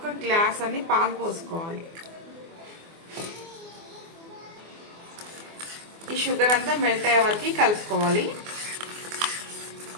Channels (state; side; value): late; left; 24 ms